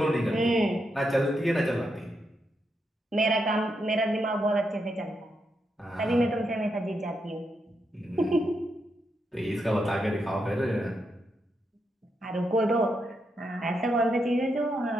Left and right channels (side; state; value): both; normal; correlation 0.82